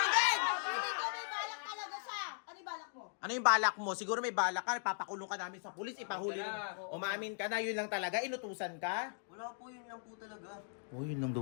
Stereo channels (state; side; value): silent; right; digital silence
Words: ko may balak talaga siya. Ano yung balak mo? Ano yung balak mo? Siguro may balak ka, papakulong ka namin sa pulis, ipahuli. Umamin ka na, yun lang talaga, inutusan ka? Wala po, yun lang po talaga. Oh, yun lang